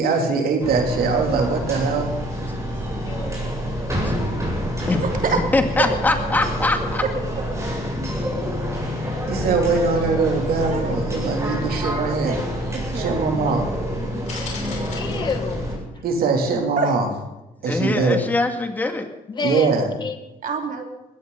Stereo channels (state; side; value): normal; both; correlation 0.54